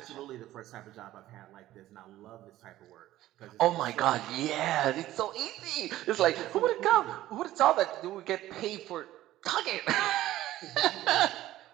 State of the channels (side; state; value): left; quieter; 14.8 dB